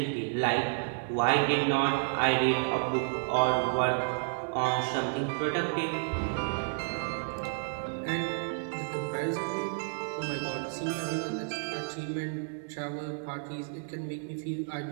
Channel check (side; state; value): left; silent; 55 dB below the other